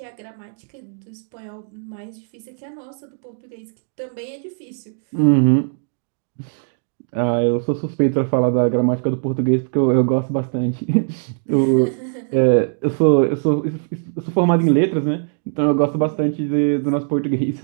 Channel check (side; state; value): left; silent; digital silence